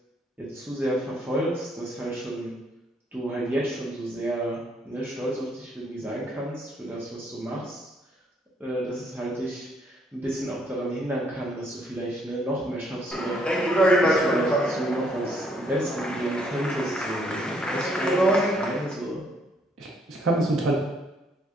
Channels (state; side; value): normal; both; correlation 0.68